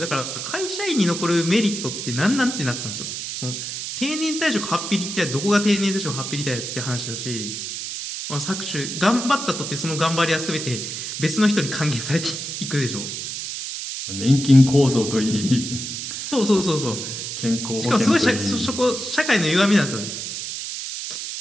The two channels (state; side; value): noise; right; hiss, 6 dB below the sound